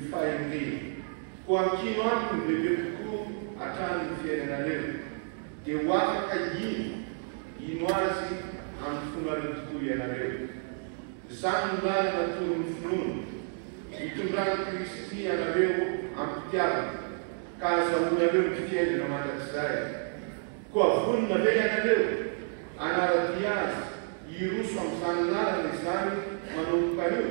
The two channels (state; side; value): silent; left; 58 dB below the other